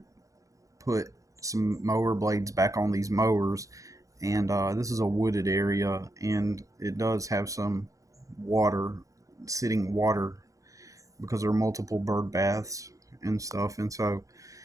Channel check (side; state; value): left; late; 0.16 ms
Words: put some mower blades back on these mowers, and this is a wooded area, and it does have some water, sitting water, because there are multiple bird baths and stuff, and so